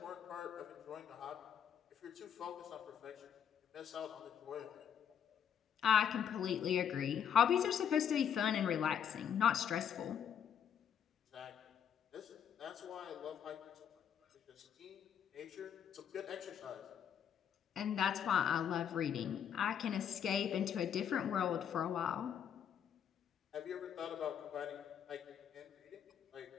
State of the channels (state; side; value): quieter; right; 8.6 dB